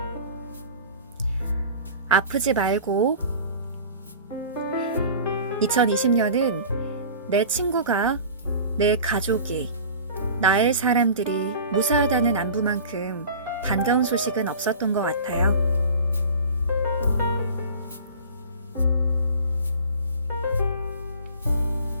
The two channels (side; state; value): both; inverted; correlation -0.40